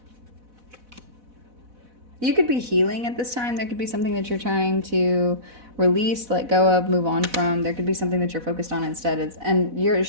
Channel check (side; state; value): left; late; 4.1 ms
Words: You could be healing at this time. There could be something that you're trying to release, let go of, move on from. There could be something that you're focused on instead. And you're